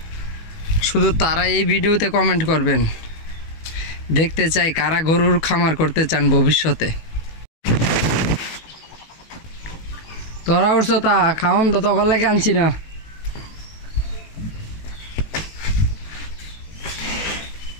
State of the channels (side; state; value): right; late; 18 ms